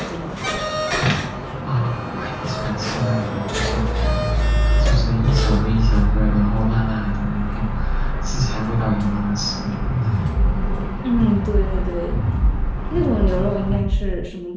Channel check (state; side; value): identical; both; correlation 1.00